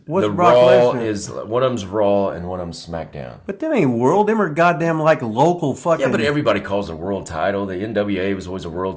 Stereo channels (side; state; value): both; identical; correlation 1.00